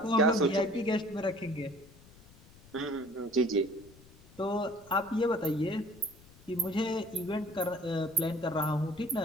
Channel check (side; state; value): left; noise; rumble, 24 dB below the sound